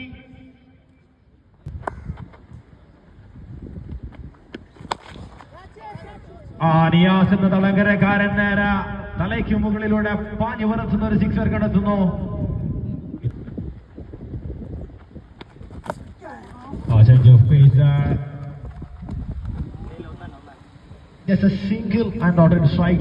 Niyas എന്ന തളങ്കരക്കാരൻ നേരെ തലയ്ക്ക് മുകളിലൂടെ പാഞ്ഞു പറത്തുന്ന ഒരു sixer കടത്തുന്നു. Change of pace there. Just a single and not a strike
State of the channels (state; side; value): identical; both; correlation 1.00